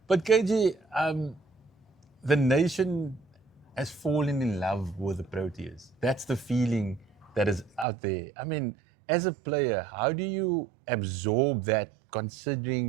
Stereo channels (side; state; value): left; drops out; at 7.9 s